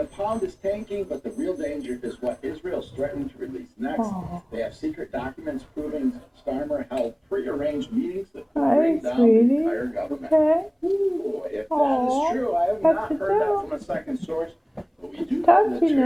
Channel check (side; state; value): both; identical; correlation 1.00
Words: pound is tanking, but the real danger is what Israel's threatening to release next. They have secret documents proving Starmer held pre-arranged meetings that could bring down the entire government. Okay. Ooh, if that is true, I have not heard that from a second source, but we do Touching